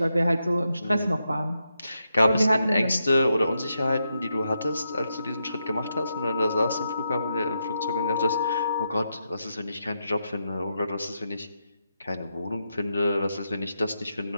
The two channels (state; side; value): inverted; both; correlation -0.84